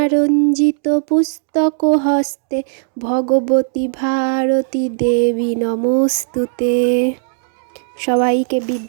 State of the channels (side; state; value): left; silent; 68 dB below the other